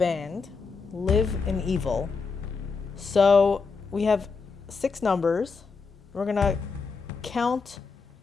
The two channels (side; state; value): right; quieter; 4.8 dB